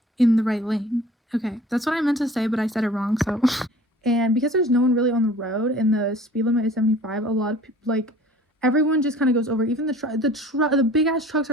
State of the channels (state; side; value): normal; both; correlation 0.47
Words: in the right lane. Okay, that's what I meant to say, but I said it wrong, so. And because there's no one really on the road and the speed limit is 75, a lot of people, like, everyone just kind of goes over. Even the big ass trucks